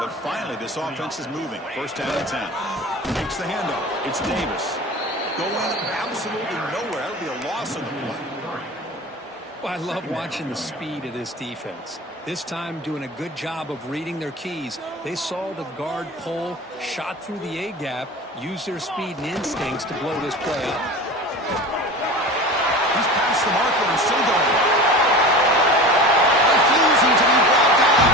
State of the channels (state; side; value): normal; both; correlation 0.34